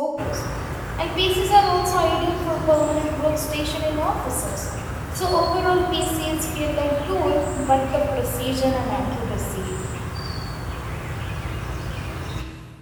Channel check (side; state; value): both; identical; correlation 1.00